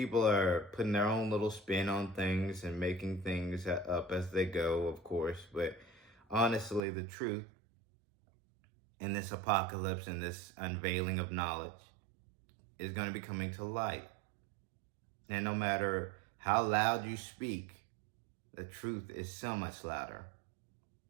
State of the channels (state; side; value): drops out; left; at 6.8 s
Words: are putting their own little spin on things and making things up as they go, of course, but honestly, the truth in this apocalypse and this unveiling of knowledge is going to be coming to light. And no matter how loud you speak, the truth is so much louder.